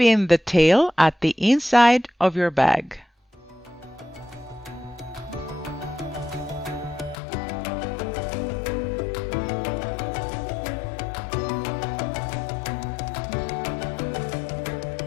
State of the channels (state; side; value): drops out; right; at 7.2 s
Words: in the tail at the inside of your bag.